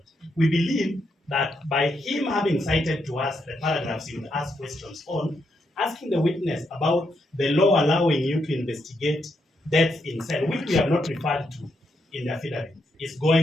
We believe that by him having cited to us the paragraphs he would ask questions on, asking the witness about the law allowing you to investigate deaths in cell, which we have not referred to in the affidavit, is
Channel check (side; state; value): both; normal; correlation 0.80